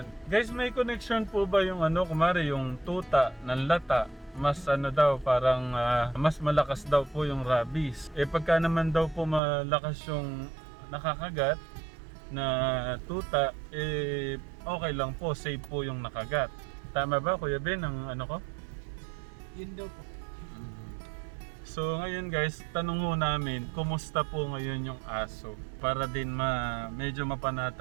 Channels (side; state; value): left; drops out; at 9.4 s